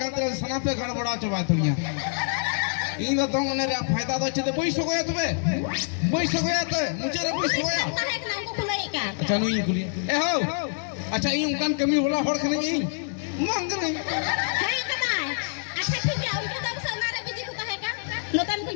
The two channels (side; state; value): right; silent; digital silence